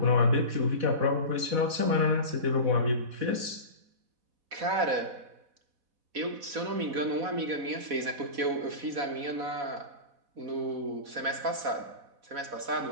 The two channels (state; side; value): late; left; 4.1 ms